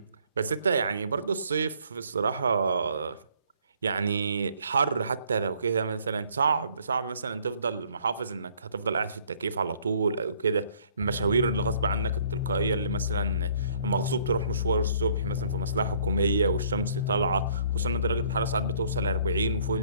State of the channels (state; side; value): inverted; both; correlation -0.61